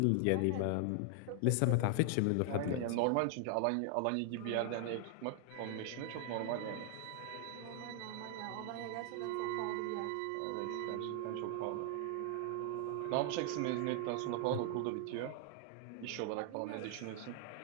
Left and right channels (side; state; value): both; different; correlation 0.00